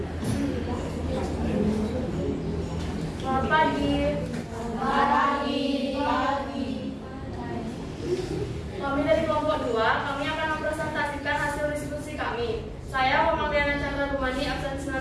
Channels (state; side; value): identical; both; correlation 1.00